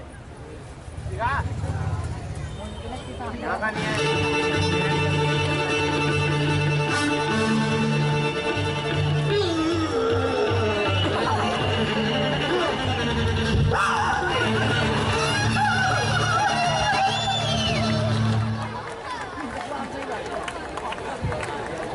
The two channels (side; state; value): both; identical; correlation 1.00